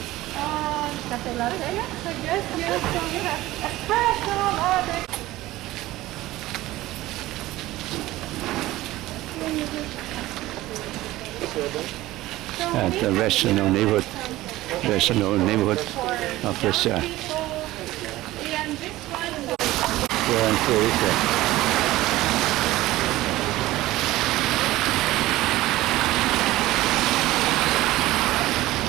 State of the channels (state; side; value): quieter; left; 17.0 dB